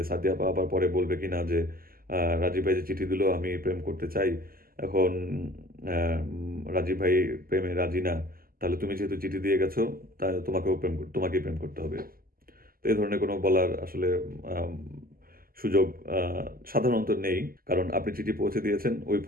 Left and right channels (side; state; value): left; late; 0.42 ms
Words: সাদিয়াবা আবার পরে বলবে কিনা যে রাজীব ভাই যে চিঠি দিল, আমি প্রেম করতে চাই, এখন রাজীব ভাই প্রেমে রাজি না, তাহলে তুমি যেহেতু চিঠি দিয়ে গেছো, তাহলে তোমাকেই প্রেম করতে হবে। তো এই ধরনের কোনো বলার আসলে সুযোগ সাধারণত নেই, কারণ আপনি চিঠি পৌঁছে দিয়েছেন, ওই